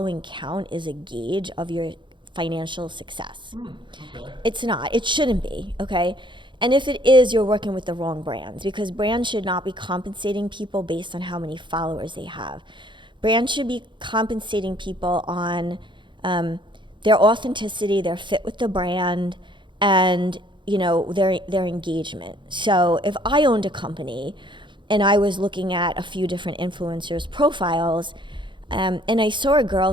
count is a gauge of your financial success. Okay. It's not. It shouldn't be, okay? And if it is, you're working with the wrong brands, because brands should not be compensating people based on how many followers they have. brands should be compensating people on their authenticity, their fit with the brand, and their engagement. So if I owned a company and I was looking at a few different influencers' profiles, and I saw a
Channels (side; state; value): left; late; 0.23 ms